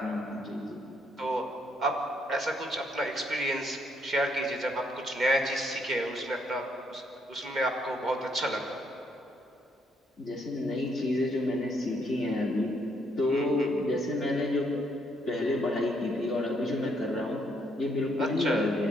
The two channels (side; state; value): both; normal; correlation 0.72